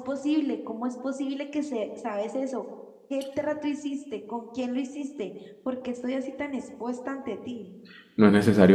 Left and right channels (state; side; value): identical; both; correlation 1.00